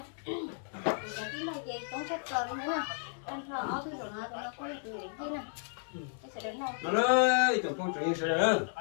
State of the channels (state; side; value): silent; right; digital silence